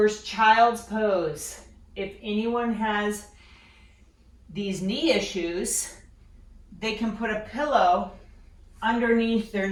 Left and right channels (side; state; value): both; identical; correlation 1.00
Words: child's pose. If anyone has these knee issues, they can put a pillow underneath their